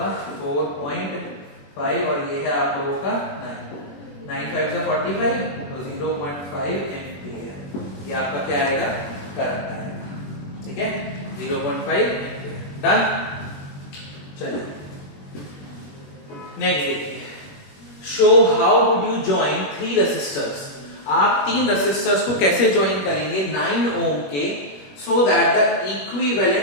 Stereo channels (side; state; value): right; late; 21 ms